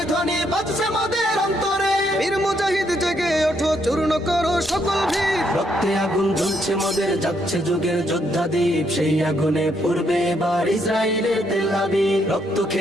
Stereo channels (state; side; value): normal; both; correlation 0.74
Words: ধ্বনি বাজছে মোদের অন্তরে। বীর মুজাহিদ জেগে ওঠো, চূর্ণ করো সকল ভিড়। রক্তে আগুন জ্বলছে মোদের, যাচ্ছে যুগের যোদ্ধা দ্বীপ। সেই আগুনে পূর্বে এবার ইসরায়েলের তেল আবিব। রক্ত